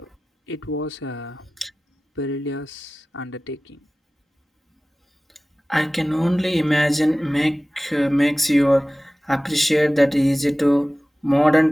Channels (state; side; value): normal; both; correlation 0.97